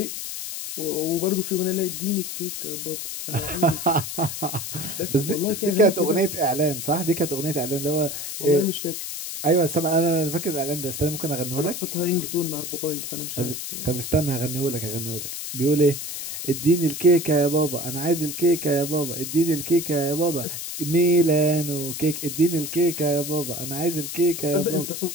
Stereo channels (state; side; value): noise; left; hiss, 6 dB below the sound